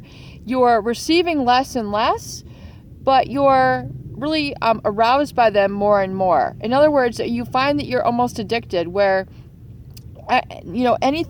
you're receiving less and less, but you're really aroused by them more and more. In other words, you find that you're almost addicted where,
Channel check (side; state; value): both; identical; correlation 1.00